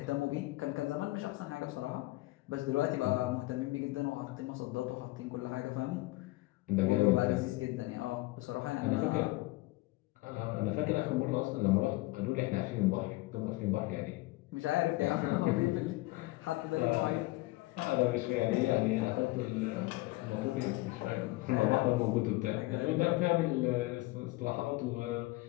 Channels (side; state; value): right; quieter; 20.5 dB